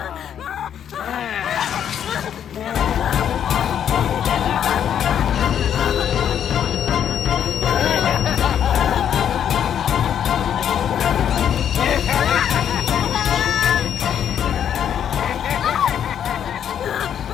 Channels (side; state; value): right; quieter; 9.2 dB